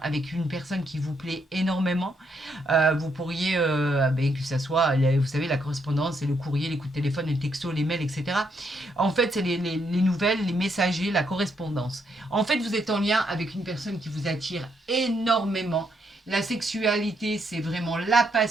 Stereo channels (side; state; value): both; normal; correlation 0.76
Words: avec une personne qui vous plaît énormément. Vous pourriez, que ça soit, vous savez, la correspondance, c'est le courrier, les coups de téléphone, les textos, les mails, etc. En fait, c'est les nouvelles, les messagers, la correspondance. En fait, vous êtes en lien avec une personne qui vous attire énormément. La sexualité, c'est vraiment la